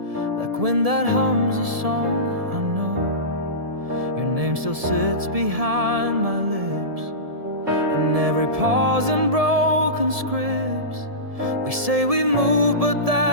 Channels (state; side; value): late; left; 1.7 ms